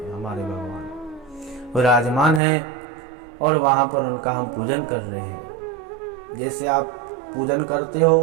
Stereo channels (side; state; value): left; drops out; at 2.4 s